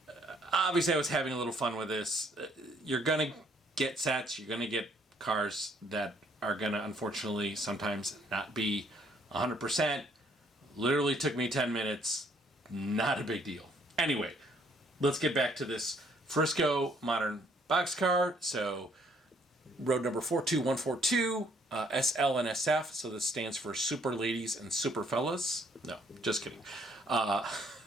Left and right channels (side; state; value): both; normal; correlation 0.65